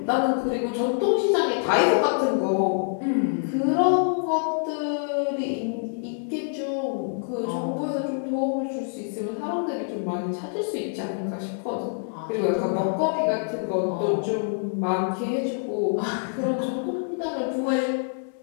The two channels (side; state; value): right; silent; 61 dB below the other